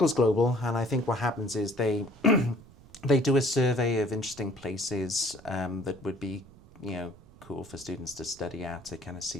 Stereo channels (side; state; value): right; noise; rumble, 23 dB below the sound